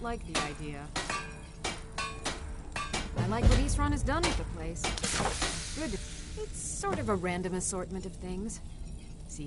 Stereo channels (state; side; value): identical; both; correlation 1.00